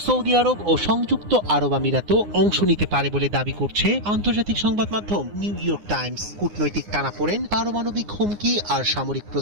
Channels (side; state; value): left; late; 9.7 ms